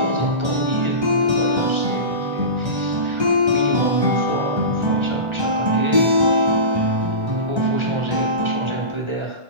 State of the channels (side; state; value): left; late; 1.3 ms